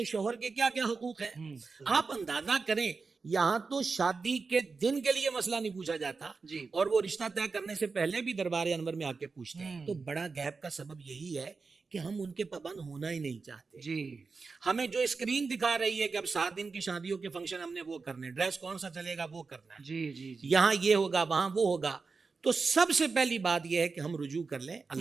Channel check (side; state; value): left; quieter; 4.5 dB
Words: شوہر کے کیا کیا حقوق ہیں. آپ اندازہ کریں، یہاں تو شادی کے دن کے لیے مسئلہ نہیں پوچھا جاتا جی. اور وہ رشتہ طے کرنے سے پہلے بھی دربار انور میں آ کے پوچھتے ہیں. تو بڑا گیپ کا سبب یہی ہے کہ ہم ان کے پابند ہونا ہی نہیں چاہتے. جی. ہمیں جو اسکرین دکھا رہی ہے کہ اب 7 دن کی شادیوں کے فنکشن ہم نے وہ کرنے، ڈریس کون سا چلے گا وہ کرنا ہے، جی جی جی. یہاں یہ ہوگا وہاں وہ ہوگا. تو سب سے پہلی بات یہ ہے کہ ہم رجوع کر لیں